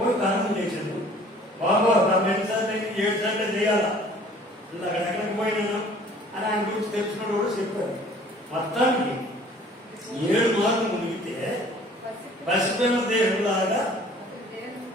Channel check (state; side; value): normal; both; correlation 0.52